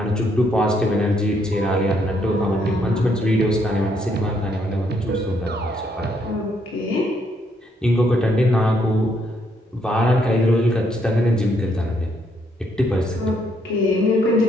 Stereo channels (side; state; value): both; normal; correlation 0.72